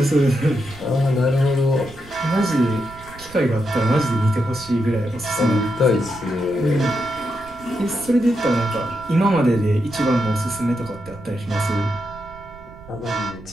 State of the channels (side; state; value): right; noise; rumble, 20 dB below the sound